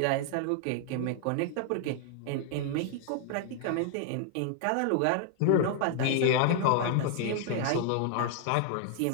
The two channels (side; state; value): both; different; correlation 0.00